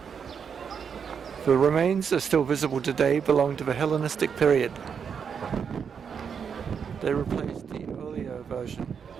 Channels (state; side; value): quieter; left; 6.8 dB